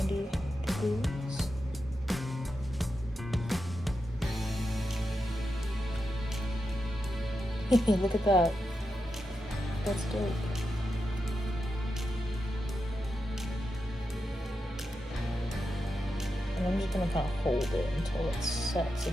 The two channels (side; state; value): both; normal; correlation 0.88